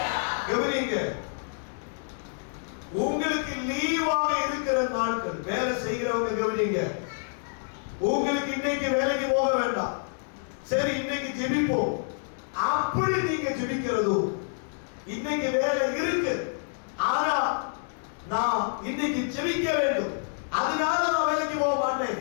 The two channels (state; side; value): silent; right; 60 dB below the other